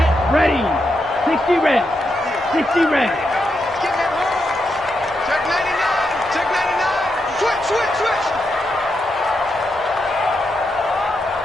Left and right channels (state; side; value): normal; both; correlation 0.84